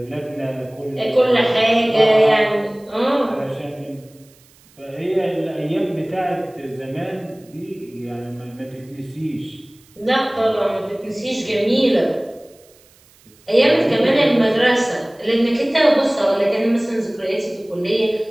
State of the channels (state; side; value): noise; right; hiss, 29 dB below the sound